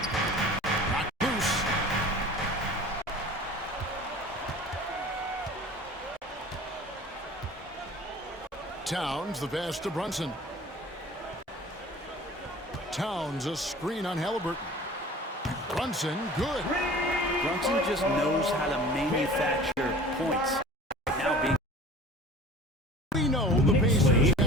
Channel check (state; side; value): normal; both; correlation 0.43